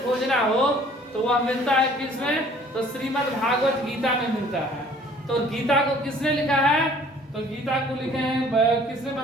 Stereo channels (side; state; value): both; normal; correlation 0.54